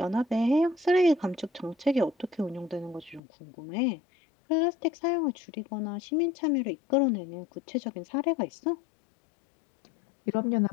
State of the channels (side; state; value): right; drops out; at 3.2 s